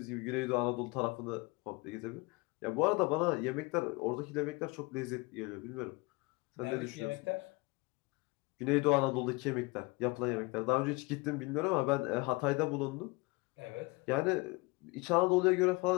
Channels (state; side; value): quieter; right; 25.9 dB